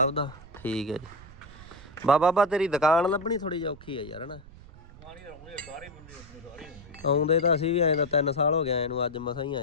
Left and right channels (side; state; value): right; noise; rumble, 19 dB below the sound